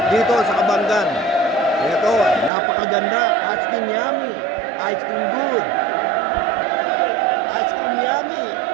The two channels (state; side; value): drops out; left; at 2.5 s